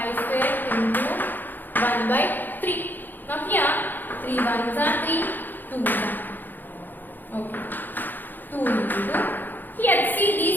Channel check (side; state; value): right; late; 0.088 ms